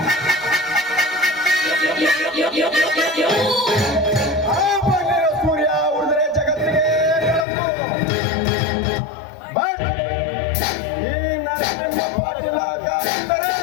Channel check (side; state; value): right; drops out; at 7.5 s